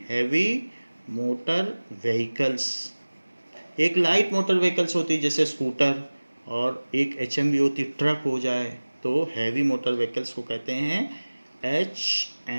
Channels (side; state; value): both; inverted; correlation -1.00